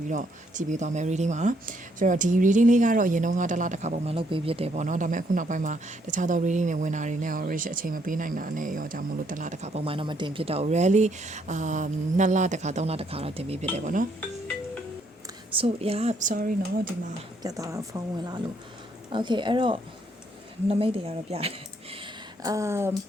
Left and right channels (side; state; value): both; normal; correlation 0.71